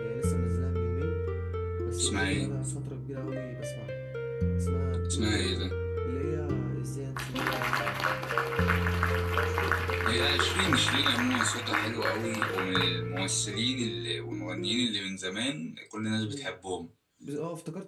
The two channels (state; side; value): identical; both; correlation 1.00